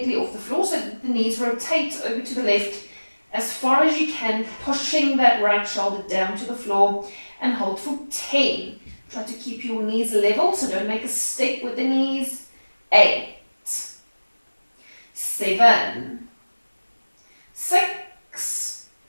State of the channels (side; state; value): both; inverted; correlation -1.00